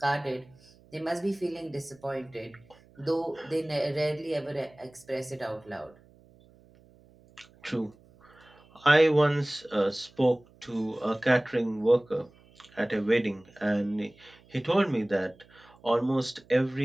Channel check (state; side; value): noise; right; hum, 28 dB below the sound